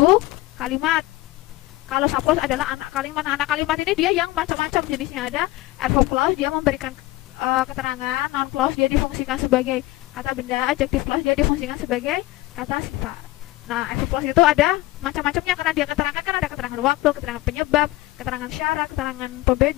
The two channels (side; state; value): right; quieter; 18.5 dB